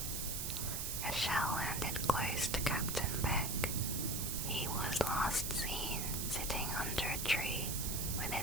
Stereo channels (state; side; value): noise; right; hiss, 2 dB below the sound